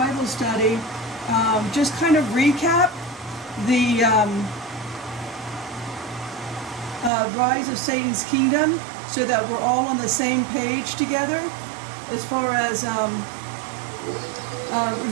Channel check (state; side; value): drops out; left; at 7.1 s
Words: study, just kind of recap the rise of Satan's kingdom so that we're all on the same page together. As far as,